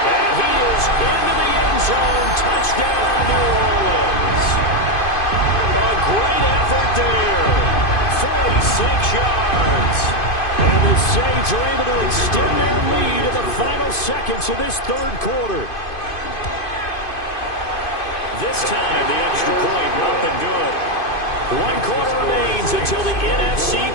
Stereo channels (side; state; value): right; late; 2.5 ms